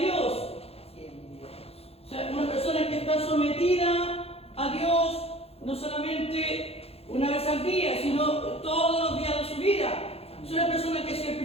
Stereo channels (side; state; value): right; late; 0.29 ms